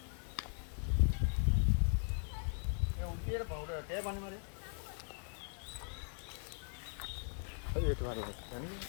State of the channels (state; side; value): silent; right; 52 dB below the other